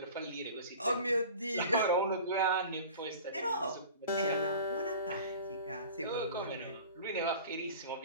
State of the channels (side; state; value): both; inverted; correlation -0.40